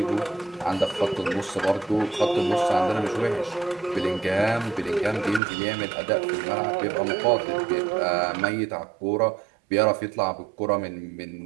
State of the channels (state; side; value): drops out; left; at 5.4 s